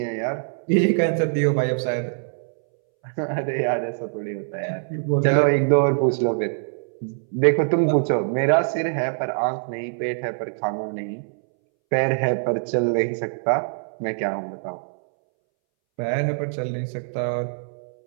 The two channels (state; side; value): silent; left; 62 dB below the other